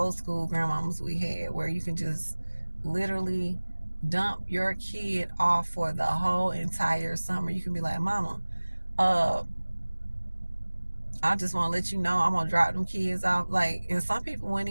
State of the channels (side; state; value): both; inverted; correlation -1.00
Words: school grandmamas we had, where you can just literally dump your kid off for the whole entire summer. You can be like, mama, uh I just want to let you know I'm gonna drop them kids off. Like, and some people wouldn't